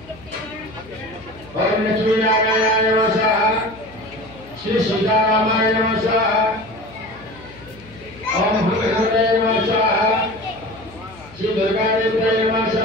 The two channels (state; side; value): noise; left; hum, 22 dB below the sound